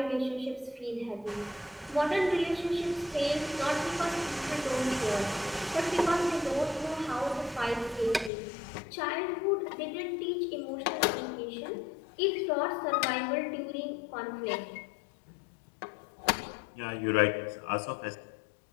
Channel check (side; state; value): right; drops out; at 8.3 s